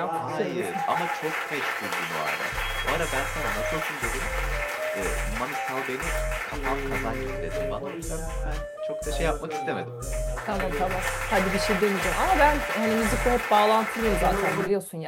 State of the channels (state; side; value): identical; both; correlation 1.00